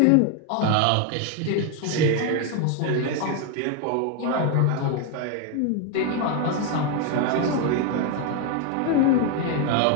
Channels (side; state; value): both; different; correlation 0.01